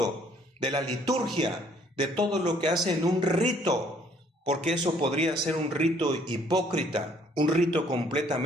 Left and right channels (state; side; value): normal; both; correlation 0.62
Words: de la liturgia, de todo lo que hacen un rito, porque eso podría ser un rito hipócrita, un rito